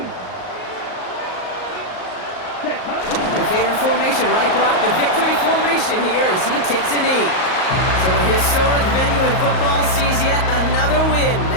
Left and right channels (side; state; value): right; late; 38 ms